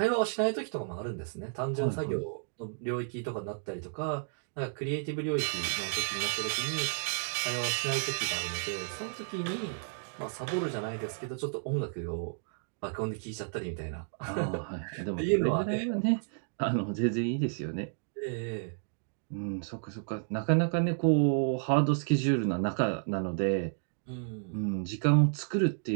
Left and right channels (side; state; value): left; silent; digital silence